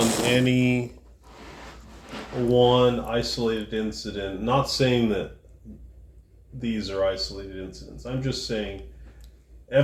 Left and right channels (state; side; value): identical; both; correlation 1.00